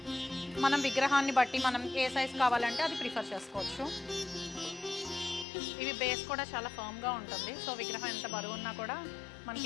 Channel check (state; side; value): drops out; right; at 5.5 s